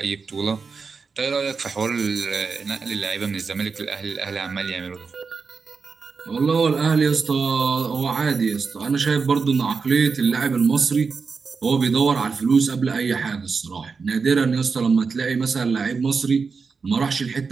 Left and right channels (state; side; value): quieter; left; 5.0 dB